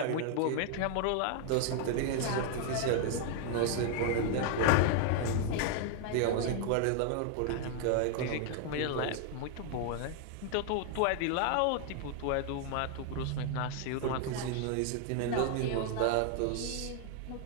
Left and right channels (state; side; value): different; both; correlation 0.00